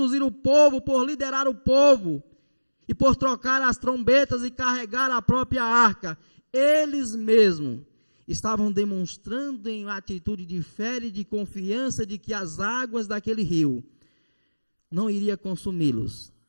o povo, por liderar o povo e por trocar as trombetas e carregar a própria arca, eles mesmos estavam demonstrando em atitude de fé e de confiança de que as águas daquele rio não iriam consumi-los.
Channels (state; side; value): inverted; both; correlation -1.00